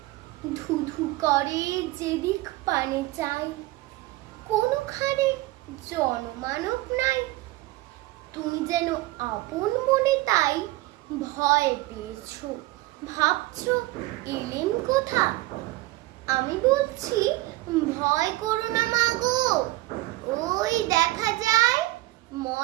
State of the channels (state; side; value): quieter; left; 19.0 dB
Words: ধুধু করে যেদিক পানে চাই, কোনোখানে জনমানব নাই। তুমি যেন আপন মনে তাই ভয় পেয়েছো, ভাবছো এলেম কোথা। আমি বলছি ভয় করো না মা গো, ওই দেখা যায়